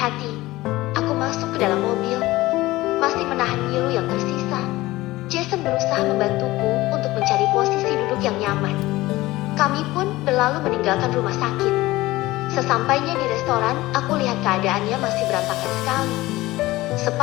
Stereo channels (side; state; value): right; quieter; 18.4 dB